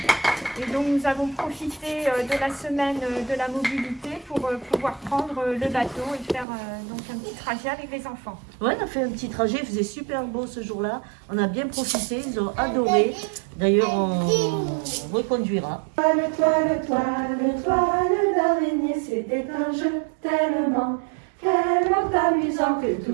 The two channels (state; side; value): drops out; left; at 6.5 s